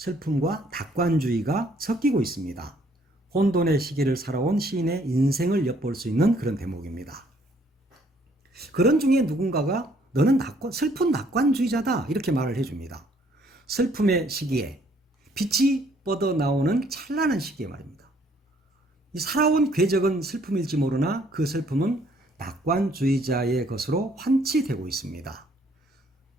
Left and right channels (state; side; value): normal; both; correlation 0.64